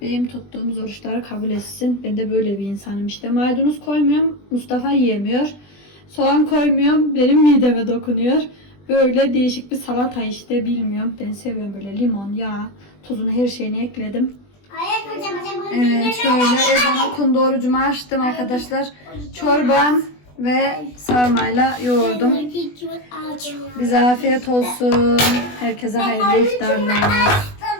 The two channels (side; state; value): right; late; 20 ms